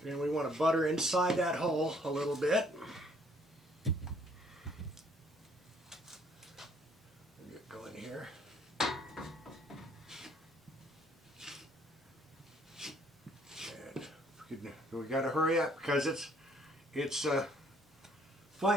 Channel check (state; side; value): normal; both; correlation 0.63